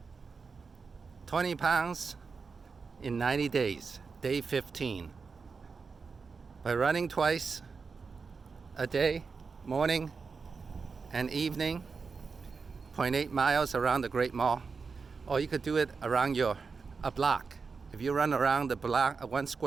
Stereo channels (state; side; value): quieter; left; 5.0 dB